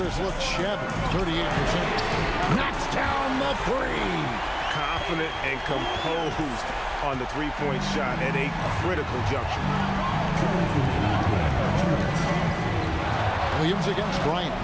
has looked shabby. 38%. Knocks down the 3. Confident and composed on the three-point shot at a critical juncture. Williams against Bryant.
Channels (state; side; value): identical; both; correlation 1.00